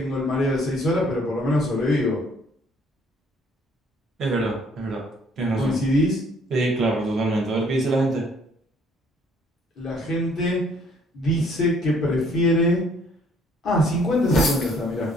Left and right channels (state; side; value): normal; both; correlation 0.62